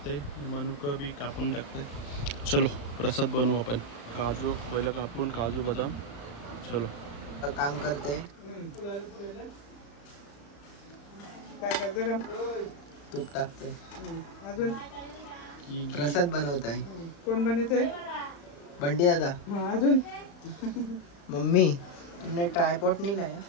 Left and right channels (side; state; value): right; late; 35 ms